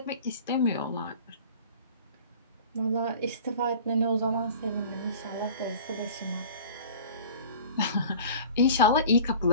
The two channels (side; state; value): both; inverted; correlation -0.42